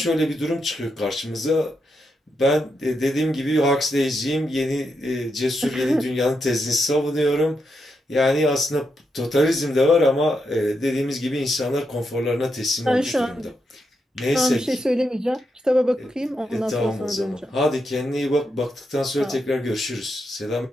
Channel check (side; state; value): both; normal; correlation 0.83